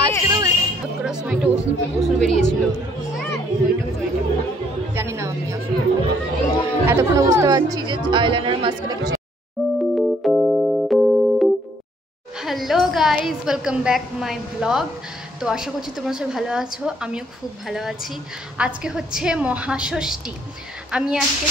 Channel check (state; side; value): normal; both; correlation 0.66